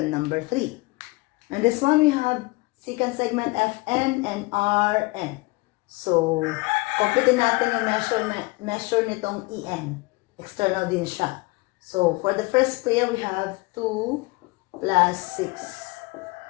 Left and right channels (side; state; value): right; quieter; 24.5 dB